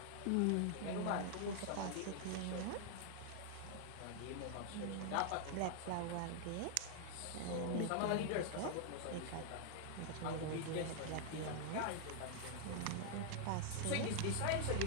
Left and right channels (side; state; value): both; different; correlation 0.00